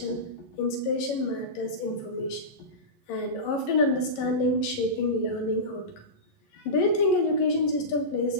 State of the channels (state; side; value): late; right; 11 ms